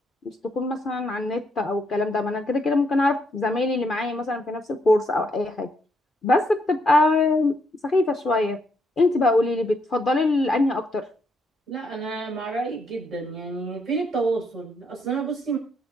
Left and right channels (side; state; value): both; normal; correlation 0.75